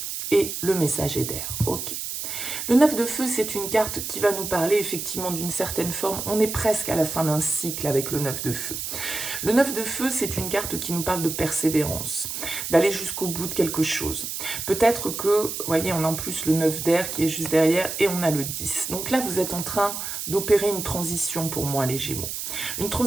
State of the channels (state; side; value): noise; right; hiss, 5 dB below the sound